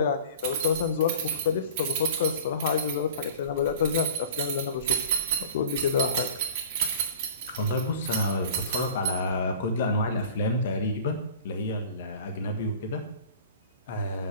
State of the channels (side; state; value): both; inverted; correlation -0.40